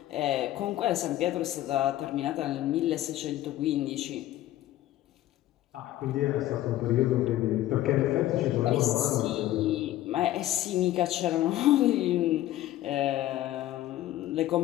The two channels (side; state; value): right; quieter; 14.4 dB